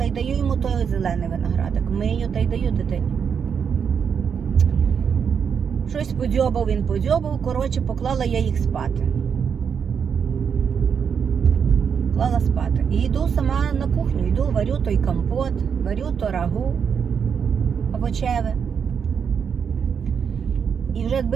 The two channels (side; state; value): left; quieter; 6.9 dB